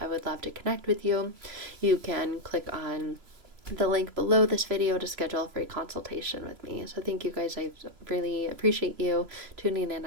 I would love to connect with you. You can click on the link below this video to schedule a free consultation with me. So thank you guys. I really appreciate you tuning in.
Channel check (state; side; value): late; left; 3.0 ms